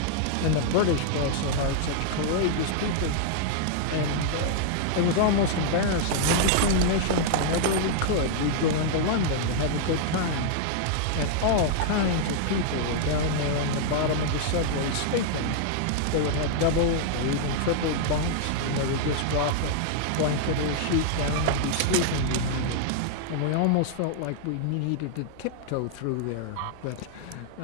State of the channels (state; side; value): different; both; correlation -0.01